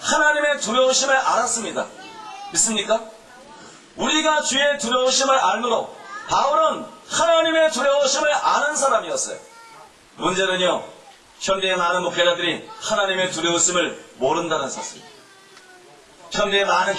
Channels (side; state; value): both; identical; correlation 1.00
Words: 하나님의 두려우심을 알았습니다. 믿습니까? 우리가 주의 두려우심을 알므로 바울은 하나님의 두려우심을 아는 사람이었어요. 문제는요 현대의 많은 목회자들이 하나님의 두려우심을 모른다는 사실입니다. 현대의 많은